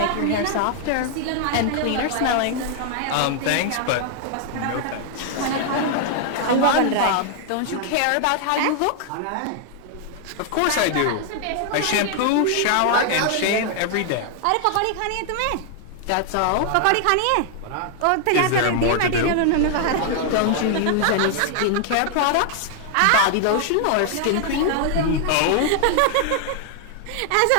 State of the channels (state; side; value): different; both; correlation 0.00